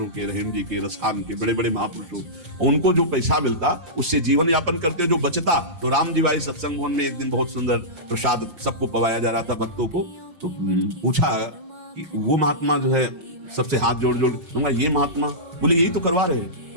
के, रहीम जी के, रसखान के, बड़े बड़े महापुरुषों, उनको जो पैसा मिलता उससे जीवन यापन करते, जो बचता तो राम जी भाई सत्संग भवन में एक दिन बहुत सुंदर प्रसाद सबको पवाया जा रहा था भक्तों को, तो पूछा कि वो महात्मा जो है सबसे हाथ जोड़ जोड़ दूंगा, ये महात्मा बोले यही तो करवा रहे हैं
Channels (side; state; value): left; late; 5.7 ms